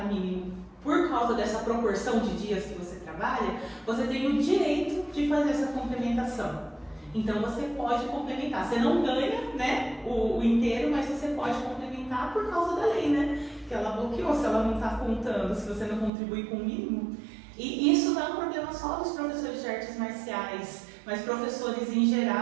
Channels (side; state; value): left; drops out; at 16.1 s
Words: mínimo por causa dessa proporção de dias que você trabalha, você tem o direito de fazer essa complementação. Então você pode complementar. Você não ganha, né, o inteiro, mas você pode complementar por causa da lei, né? Que ela bloqueou, se ela não está contando, se você não contribui com o mínimo. E isso não é um problema só dos professores de artes marciais, mas professores em